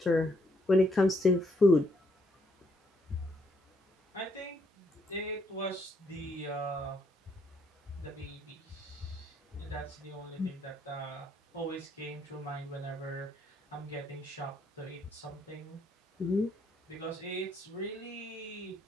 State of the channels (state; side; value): normal; both; correlation 0.72